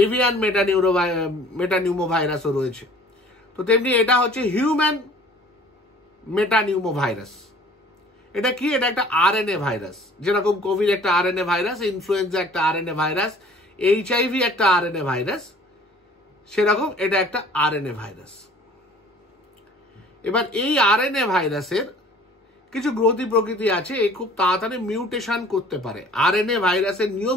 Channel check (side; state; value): both; normal; correlation 0.51